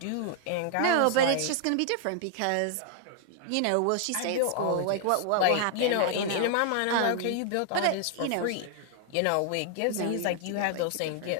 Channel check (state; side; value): different; both; correlation 0.00